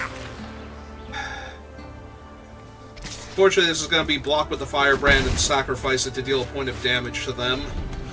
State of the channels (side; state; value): both; identical; correlation 1.00